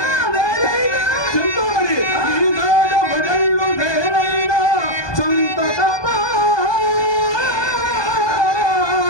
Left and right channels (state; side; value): late; right; 1.2 ms